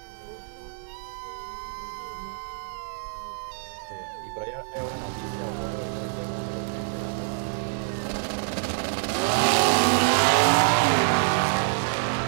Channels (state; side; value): silent; left; digital silence